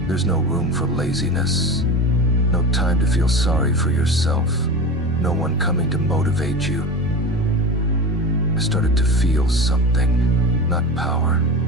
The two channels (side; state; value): both; normal; correlation 0.28